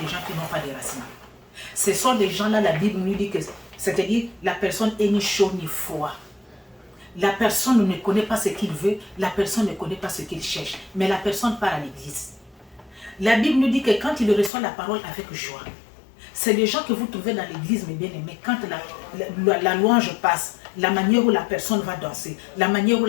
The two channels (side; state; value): right; drops out; at 14.5 s